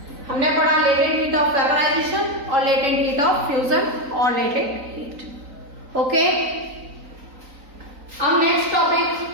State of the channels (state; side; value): late; left; 3.9 ms